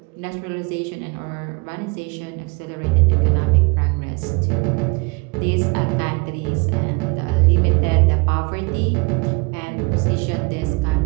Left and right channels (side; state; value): left; quieter; 29.3 dB